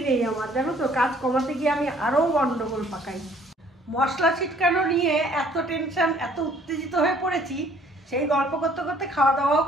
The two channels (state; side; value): normal; both; correlation 0.59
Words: নেই আমার, জানো তো। কাজ কমাতে গিয়ে আমি আরও গন্ডগোল পাকাই। মশলা ছিটকানো নিয়ে এত টেনশন, এত উত্তেজিত হয়ে পড়েছি, সেই গল্প করতে করতে খাওয়া দাওয়াও